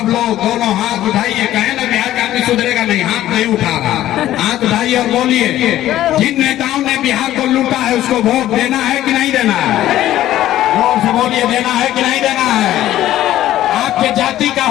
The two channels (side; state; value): right; quieter; 13.5 dB